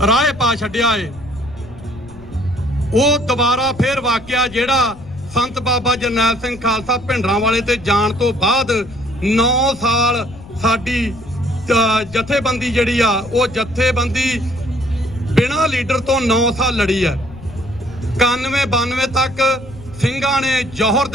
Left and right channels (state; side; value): noise; left; rumble, 18 dB below the sound